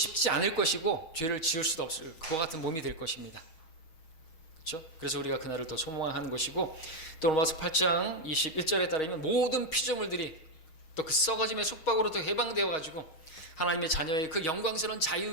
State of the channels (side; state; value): right; late; 6.3 ms